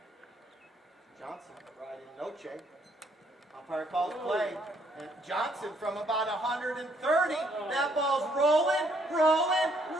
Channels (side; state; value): both; normal; correlation 0.68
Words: Johnson riding Noche. Umpire calls play. And Johnson from about 130. That ball's rolling.